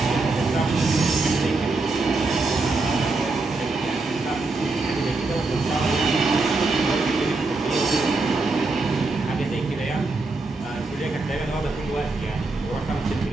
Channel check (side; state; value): left; quieter; 3.5 dB